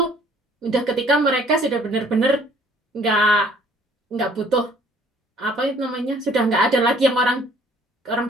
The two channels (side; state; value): both; normal; correlation 0.58